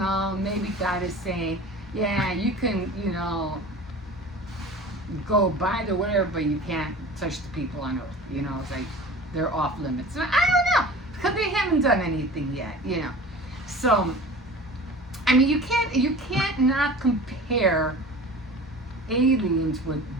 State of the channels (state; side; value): normal; both; correlation 0.39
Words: maybe God is saying, yeah, you can, go by the whatever, but you can't touch the people on Earth. It's like they're off limits. I don't know, because they haven't done anything yet. So, I mean, you can't not compare aliens with